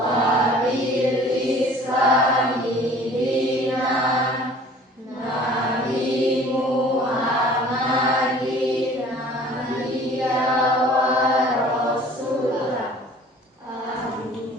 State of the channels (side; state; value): both; normal; correlation 0.49